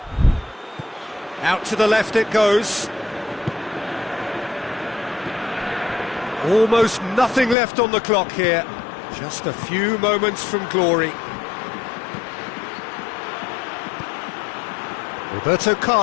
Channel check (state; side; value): drops out; right; at 7.6 s